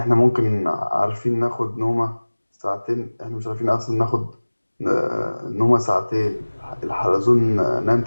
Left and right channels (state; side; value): inverted; both; correlation -1.00